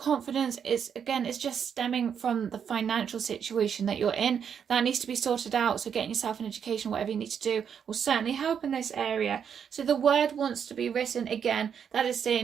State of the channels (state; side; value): quieter; left; 7.6 dB